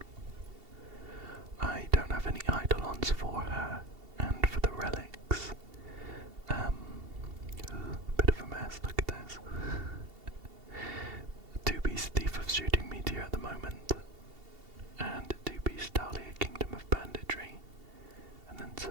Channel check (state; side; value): late; left; 2.7 ms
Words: I don't have any Eidolons for her, and for the relics, bit of a mess. Look at this. 2-piece Thief of Shooting Meteor at the moment, and 2-piece Dahlia Kingdom of Banditry, and then